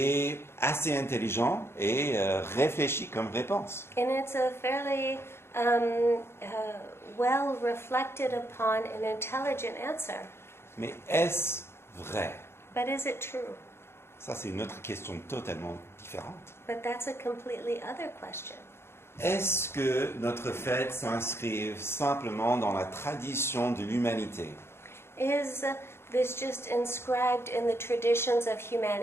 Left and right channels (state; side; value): late; right; 0.12 ms